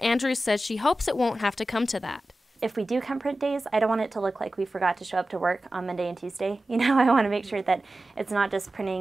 Andrews says she hopes it won't have to come to that. If we do cut print days, I don't want it to look like we forgot to show up to work on Monday and Tuesday. I want to make sure that it's not just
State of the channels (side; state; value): both; normal; correlation 0.95